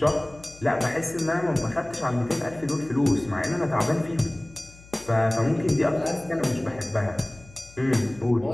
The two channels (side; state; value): left; noise; hum, 22 dB below the sound